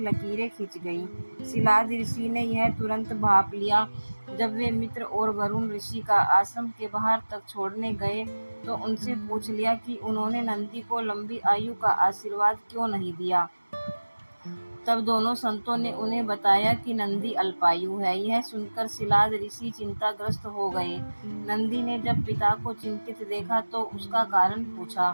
खिंच गईं। सिलाद ऋषि ने यह तुरंत भांप लिया। जब वे मित्र और वरुण ऋषि का आश्रम के बाहर तक छोड़ने गए तो उनसे पूछ लिया कि उन्होंने नंदी को लंबी आयु का आशीर्वाद क्यों नहीं दिया। तब दोनों संतों ने उन्हें बताया कि नंदी अल्पायु है। यह सुनकर सिलाद ऋषि चिंताग्रस्त हो गए। नंदी ने जब पिता को चिंतित देखा तो उसका कारण पूछा।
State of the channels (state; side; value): inverted; both; correlation -1.00